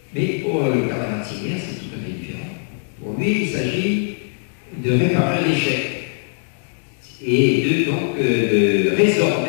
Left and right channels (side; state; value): right; silent; digital silence